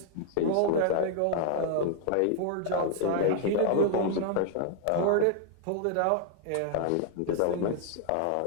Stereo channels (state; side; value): different; both; correlation 0.00